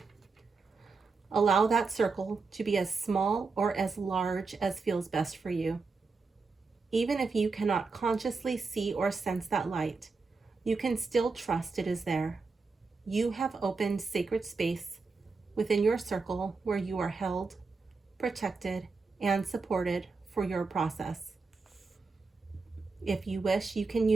Allow that circle to be as small or as large as feels best for you. Even if you cannot consciously see or sense that light, you can still trust it is there. You have opened sacred space within your circle where you are held, protected, and supported for your process. If you wish, you can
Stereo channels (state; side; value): quieter; left; 4.3 dB